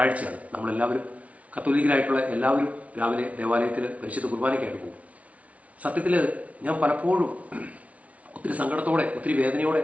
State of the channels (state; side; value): late; left; 0.066 ms